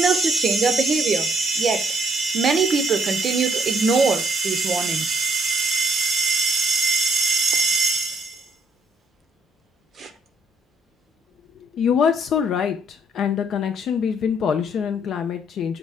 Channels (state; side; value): normal; both; correlation 0.69